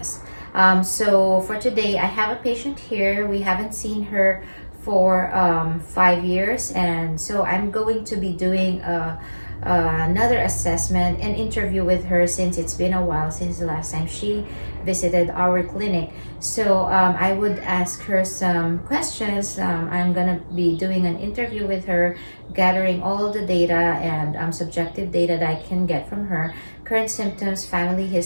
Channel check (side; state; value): both; inverted; correlation -1.00